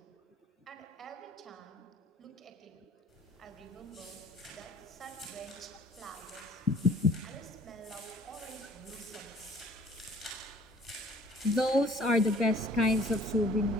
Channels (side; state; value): both; normal; correlation 0.53